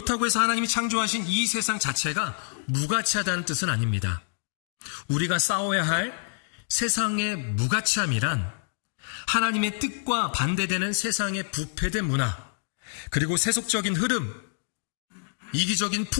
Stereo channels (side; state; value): right; silent; digital silence